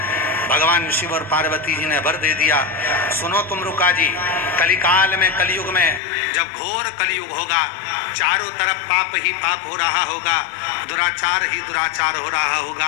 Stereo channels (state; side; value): drops out; right; at 6.0 s